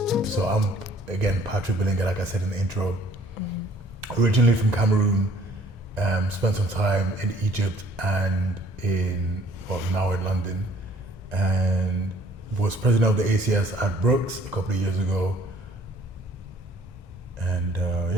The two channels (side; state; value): both; normal; correlation 0.58